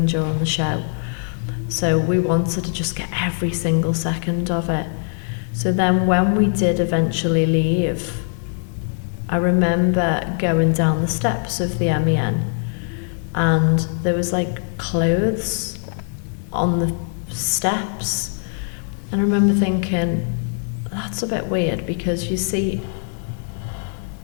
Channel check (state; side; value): silent; right; 65 dB below the other